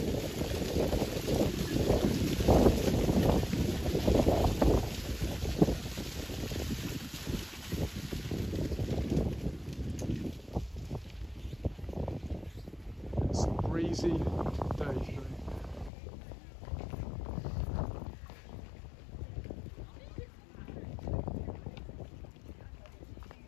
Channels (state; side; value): drops out; right; at 15.9 s